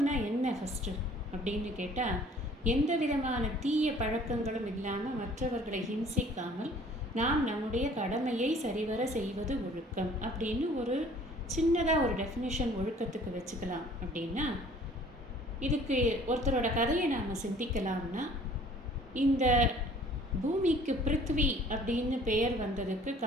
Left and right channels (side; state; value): both; normal; correlation 0.53